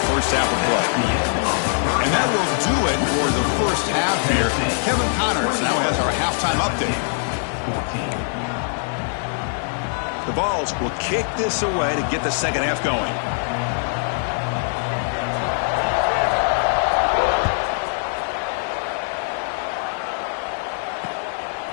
first half of play. And that will do it for the first half here. Kevin Connors now has our halftime update. The Vols will kick this away to get the second half going.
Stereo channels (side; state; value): right; silent; digital silence